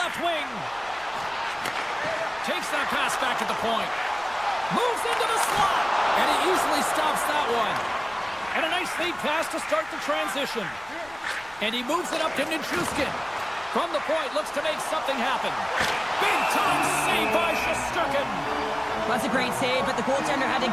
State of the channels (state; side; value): noise; left; rumble, 25 dB below the sound